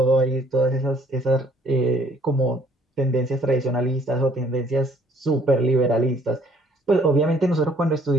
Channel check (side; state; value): both; normal; correlation 0.61